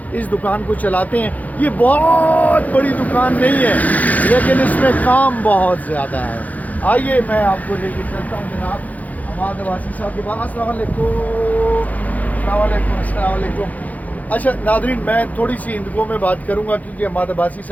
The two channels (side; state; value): right; late; 0.077 ms